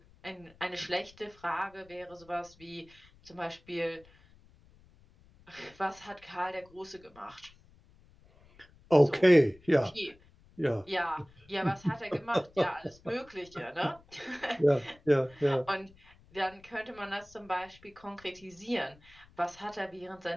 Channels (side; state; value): left; noise; rumble, 27 dB below the sound